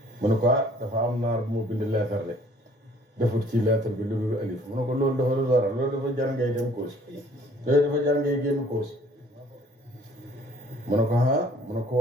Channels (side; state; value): both; normal; correlation 0.57